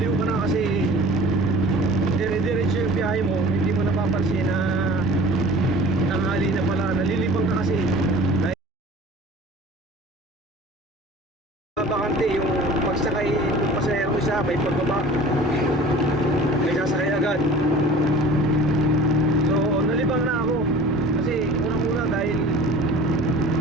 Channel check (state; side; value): normal; both; correlation 0.43